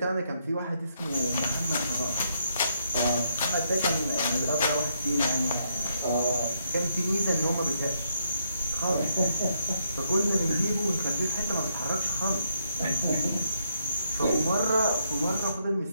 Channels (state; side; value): inverted; both; correlation -0.76